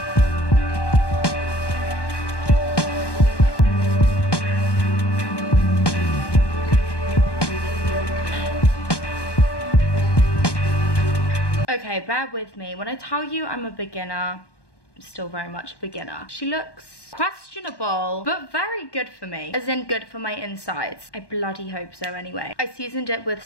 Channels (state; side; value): late; right; 1.1 ms